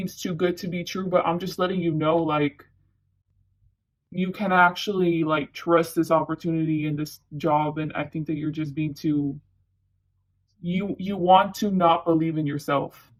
too good to be true. But I'm just letting you know, like, you can actually like trust this opportunity in this job. And I think that you're just being too, you want to not believe in yourself.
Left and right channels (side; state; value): both; identical; correlation 1.00